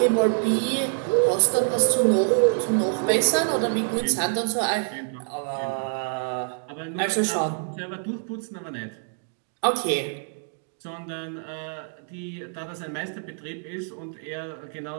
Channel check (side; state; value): left; silent; 61 dB below the other